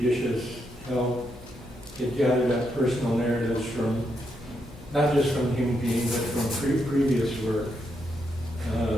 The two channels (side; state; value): both; normal; correlation 0.80